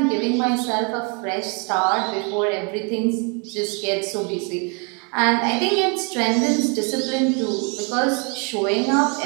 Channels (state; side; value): quieter; left; 34.6 dB